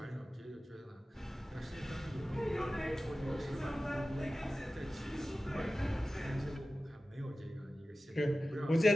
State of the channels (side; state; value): both; normal; correlation 0.95